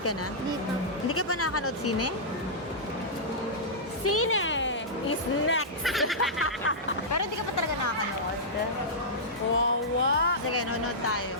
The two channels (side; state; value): both; normal; correlation -0.12